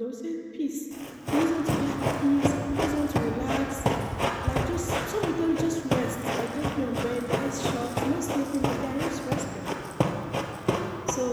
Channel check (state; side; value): identical; both; correlation 1.00